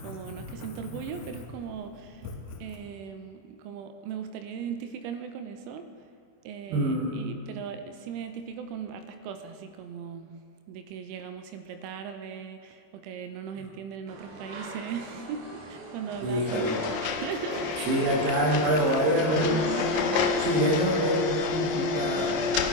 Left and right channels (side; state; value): left; late; 26 ms